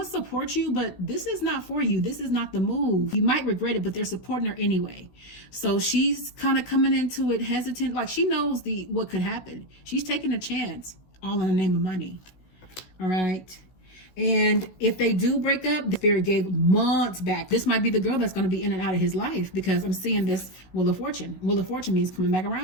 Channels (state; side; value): late; right; 16 ms